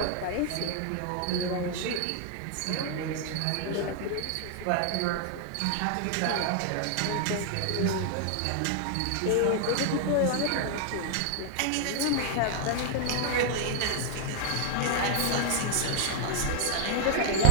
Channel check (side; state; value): both; different; correlation 0.00